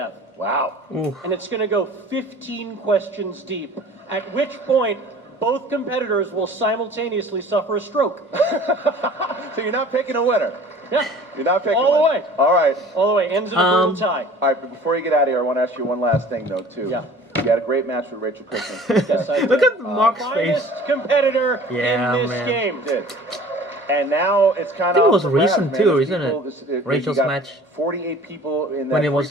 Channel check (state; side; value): normal; both; correlation 0.46